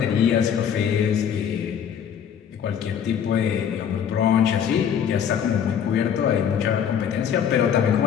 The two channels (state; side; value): quieter; right; 8.3 dB